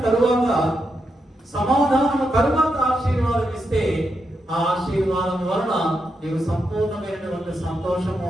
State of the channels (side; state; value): both; normal; correlation 0.84